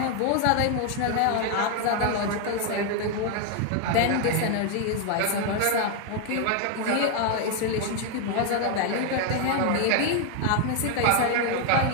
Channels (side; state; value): both; different; correlation 0.01